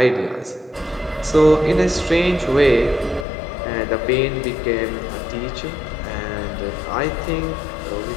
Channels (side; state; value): right; drops out; at 3.2 s